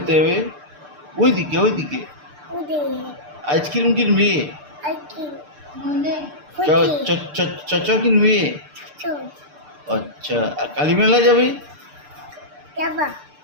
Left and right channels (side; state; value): left; late; 6.7 ms